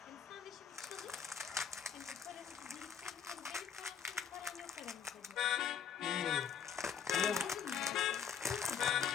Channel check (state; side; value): quieter; right; 7.7 dB